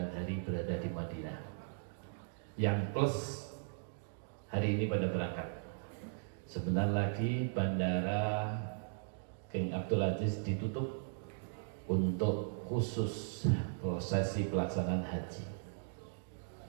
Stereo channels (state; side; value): silent; left; digital silence